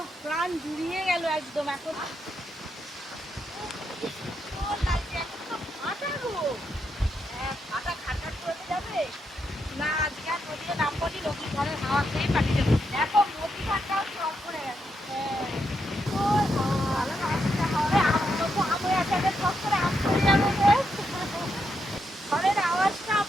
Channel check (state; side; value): normal; both; correlation 0.81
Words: প্রাণ জুড়িয়ে গেল একদম। এখন না আজকে আর নদীতে নামবো নি, নদীর ঘরের হাওয়া খেয়ে পাঠিয়ে যাবো। দেখো নদী ঘাটটা সব পড়ে গেছে। ঘরের আওয়াজটা